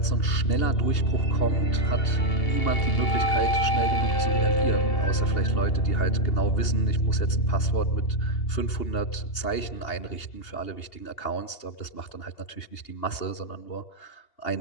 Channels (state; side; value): late; right; 2.8 ms